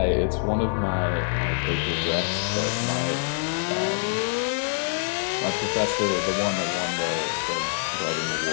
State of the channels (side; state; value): right; silent; 61 dB below the other